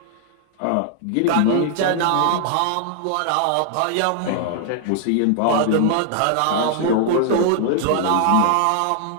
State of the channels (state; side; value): different; both; correlation 0.00